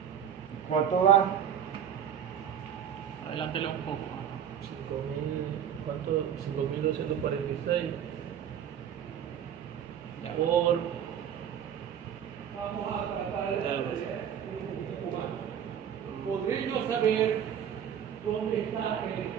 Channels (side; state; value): left; quieter; 8.9 dB